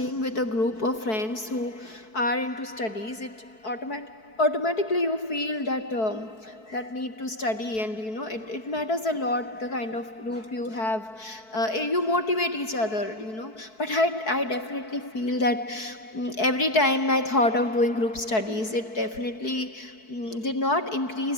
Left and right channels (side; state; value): right; late; 4.6 ms